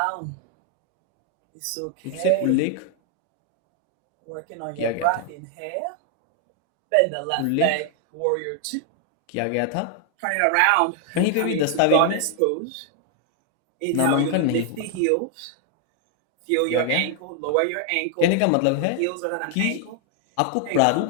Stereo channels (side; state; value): both; different; correlation 0.00